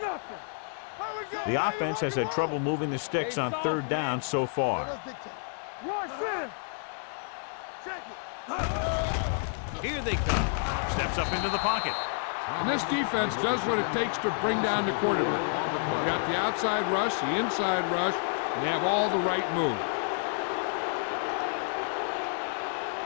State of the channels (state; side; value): silent; right; 58 dB below the other